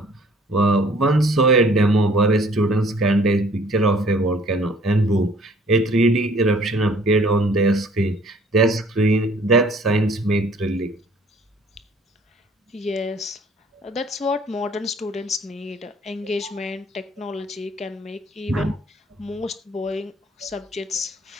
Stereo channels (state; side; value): normal; both; correlation 0.56